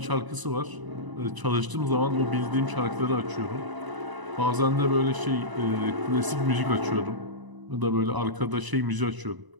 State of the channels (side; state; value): left; late; 1.0 ms